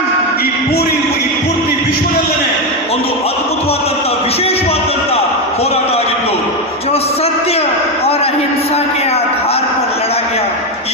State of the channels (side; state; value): both; normal; correlation 0.10